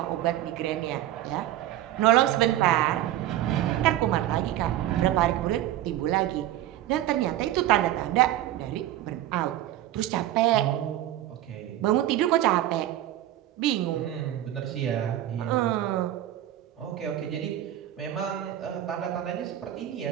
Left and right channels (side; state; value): left; quieter; 13.3 dB